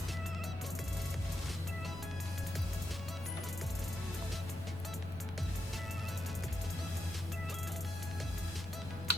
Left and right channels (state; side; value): noise; right; rumble, 15 dB below the sound